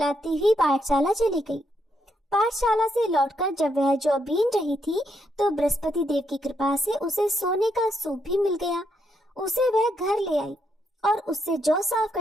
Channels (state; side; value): normal; both; correlation 0.78